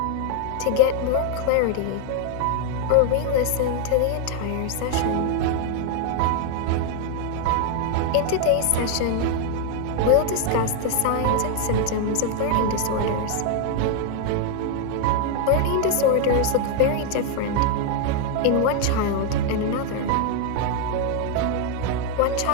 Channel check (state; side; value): different; both; correlation 0.00